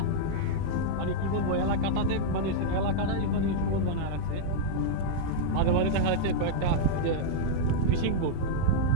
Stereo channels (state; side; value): different; both; correlation -0.02